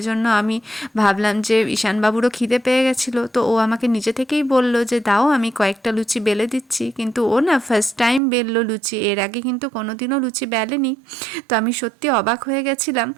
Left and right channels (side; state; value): left; drops out; at 8.2 s